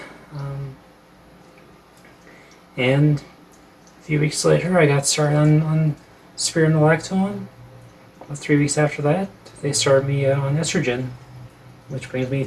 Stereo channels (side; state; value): both; identical; correlation 1.00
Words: And a few weeks later, I got started on spironolactone. About 3 weeks after that, they started me on estrogen, which brings me